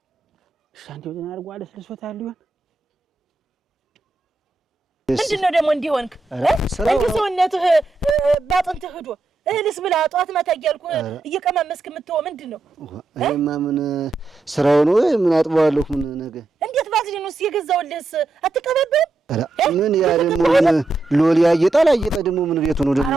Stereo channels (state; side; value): quieter; left; 3.3 dB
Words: ሻንቲው ተናርጓ አለስልሶታል ይሆን ምንድነው ደግሞ እንዲሆንክ እንዴ ሰውነትህ ባጥንትህ ሄዶ እህልስ ብላ ጧት ማታ እያልኩ እየቀማመስክ የምትወው ምንድነው አይማ ምን ስራው ነው ምን አጥባለሁ ምን ነገር እንዴት ባዝሊኑስ የገዛውልህስ አትቀበብም ምን ያ ደግሞ ምን ሎሊ ያየጣል አየጣ ደግሞ ምን ቤቱ ነው ደግሞ